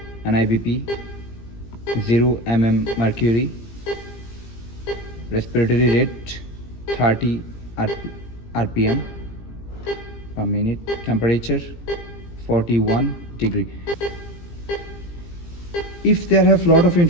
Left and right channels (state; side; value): late; right; 17 ms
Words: NIBP, 0 mm mercury. Respiratory rate, 30 RPM per minute. Temperature, 41 degree. If there have lot of